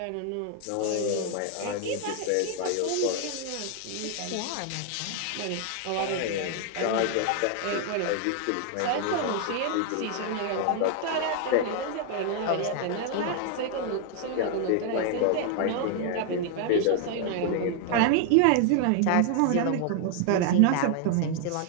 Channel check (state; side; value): different; both; correlation 0.00